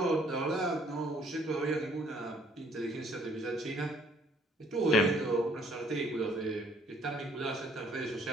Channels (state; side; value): normal; both; correlation 0.62